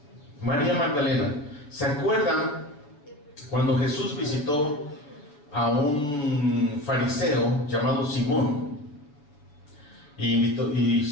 María Magdalena. ¿Se acuerdan cuando Jesús visitó a un fariseo llamado Simón? Y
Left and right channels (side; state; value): right; late; 7.0 ms